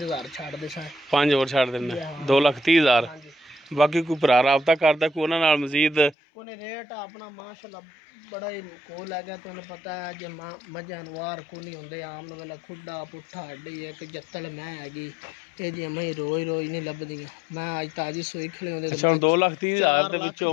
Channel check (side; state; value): right; drops out; at 6.2 s